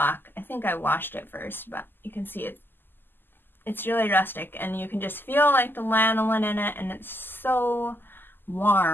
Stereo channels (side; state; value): right; late; 0.094 ms